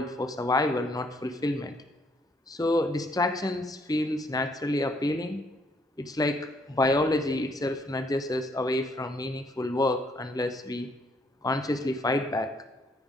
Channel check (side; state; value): both; normal; correlation 0.68